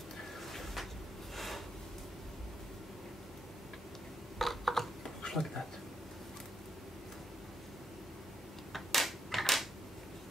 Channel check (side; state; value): both; normal; correlation 0.75